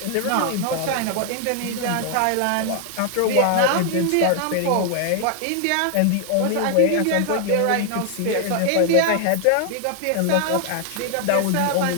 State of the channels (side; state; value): both; different; correlation 0.00